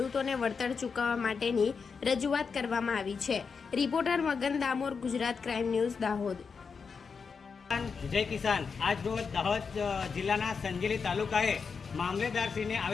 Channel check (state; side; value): quieter; right; 5.5 dB